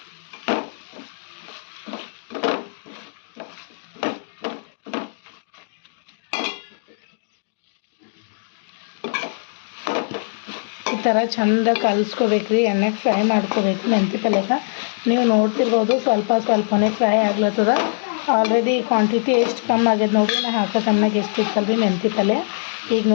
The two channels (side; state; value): right; silent; digital silence